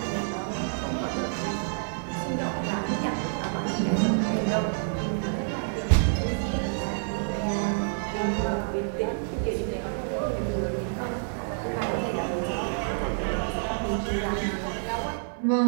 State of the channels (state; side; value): silent; left; 59 dB below the other